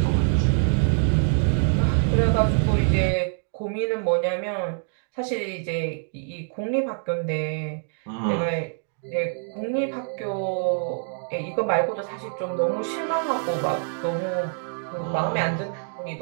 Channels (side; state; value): left; silent; 62 dB below the other